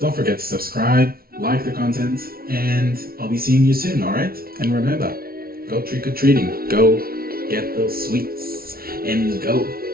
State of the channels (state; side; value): late; left; 0.44 ms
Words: forget to subscribe, like the content, and I'll be seeing you soon, alright? And remember, go trick-or-treating, go get those sweets, and go